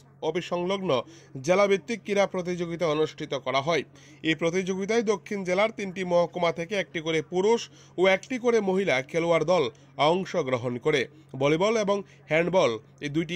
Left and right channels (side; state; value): both; identical; correlation 1.00